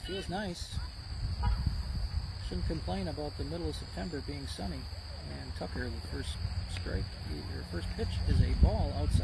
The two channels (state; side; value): identical; both; correlation 1.00